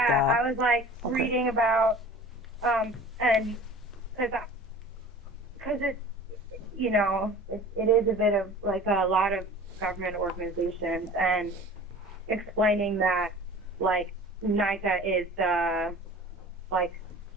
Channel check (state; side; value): normal; both; correlation 0.42